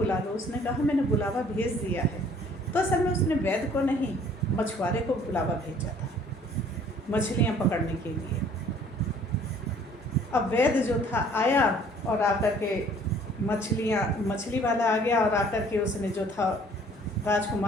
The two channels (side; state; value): both; normal; correlation 0.56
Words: लो। उसने कहा, मैंने बुलावा भेज दिया है। तो असल में उसने वैद्य को नहीं, मछुआरे को बुलावा भेजा था मछलियाँ पकड़ने के लिए। अब वैद्य जो था आया और आकर के मछली वाला आ गया और आकर के उसने जो था